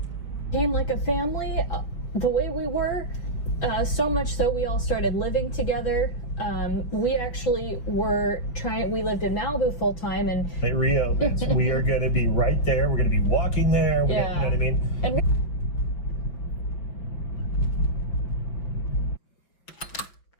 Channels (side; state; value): right; late; 5.6 ms